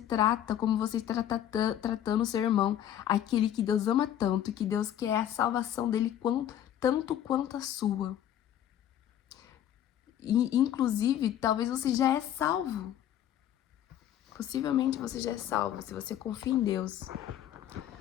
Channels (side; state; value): right; quieter; 10.9 dB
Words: tratando o seu irmão, aquele que Deus ama tanto, que Deus quer a salvação dele tanto quanto a sua. E, inclusive, talvez você já é salvo. Possivelmente você já é salvo, se você confia em Deus.